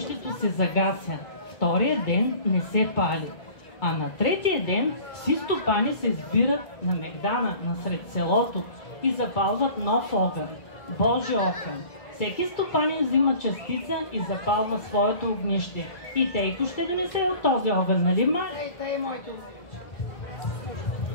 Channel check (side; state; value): right; late; 2.3 ms